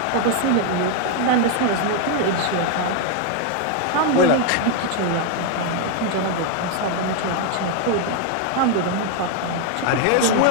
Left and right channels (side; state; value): both; different; correlation 0.01